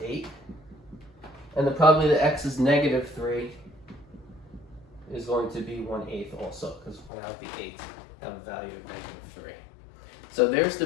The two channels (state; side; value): drops out; right; at 7.1 s